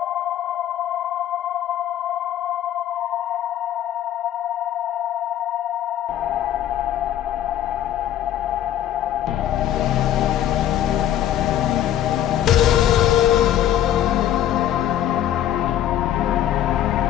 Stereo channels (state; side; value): quieter; right; 11.5 dB